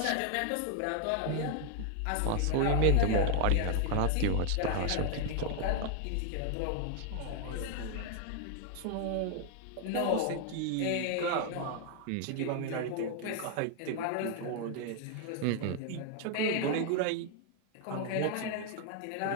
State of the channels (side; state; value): both; different; correlation 0.00